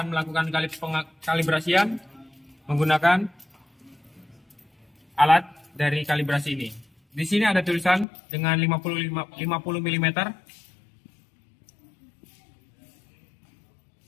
melakukan kalibrasian menggunakan alat dari kalibrasi ini. Di sini ada tulisan dengan 50 mm.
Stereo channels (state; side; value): drops out; right; at 8.1 s